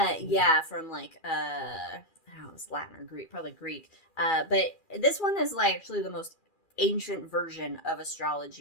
from like I don't know, it's Latin or Greek, probably Greek. But this one is like actually the most ancient version of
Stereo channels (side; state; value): right; late; 2.4 ms